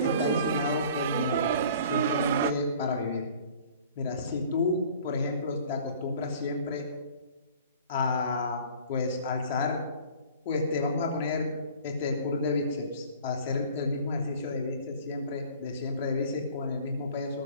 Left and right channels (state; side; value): inverted; both; correlation -0.48